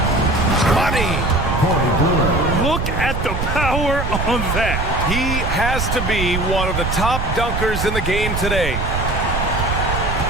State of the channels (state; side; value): noise; right; rumble, 2 dB below the sound